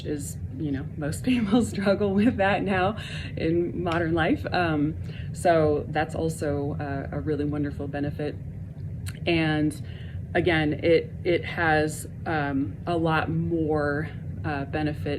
is, most people struggle with that now in modern life. So that's also a really wonderful benefit. And again, it has a lot more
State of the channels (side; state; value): both; identical; correlation 1.00